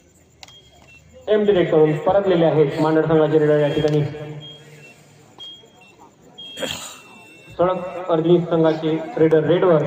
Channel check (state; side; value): identical; both; correlation 1.00